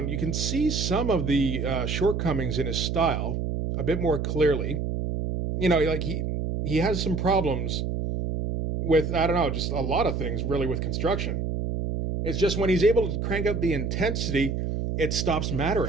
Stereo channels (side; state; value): right; noise; hum, 2 dB below the sound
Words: you can see some of the shortcomings in his style a bit more clearly. You know, like he has some problems with, I don't know, just a lot of things really with construction. It's just when he's able to crank up the intensity, it stops